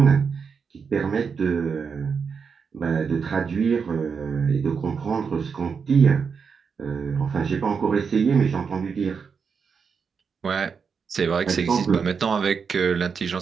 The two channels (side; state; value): left; quieter; 5.9 dB